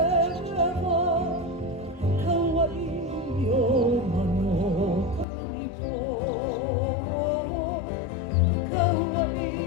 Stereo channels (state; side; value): drops out; right; at 5.2 s